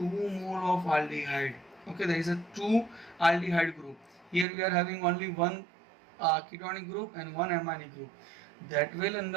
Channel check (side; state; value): left; drops out; at 4.5 s